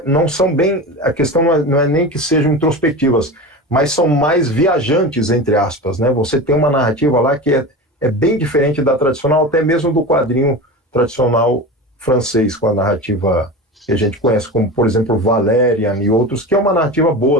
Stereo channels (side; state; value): both; normal; correlation 0.28